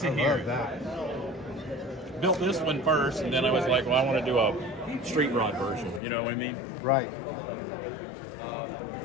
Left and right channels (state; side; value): drops out; right; at 6.0 s